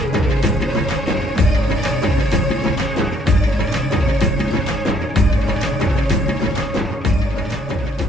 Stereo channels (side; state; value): both; normal; correlation 0.67